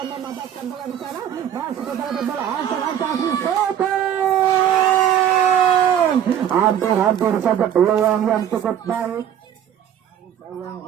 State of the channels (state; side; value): quieter; left; 9.9 dB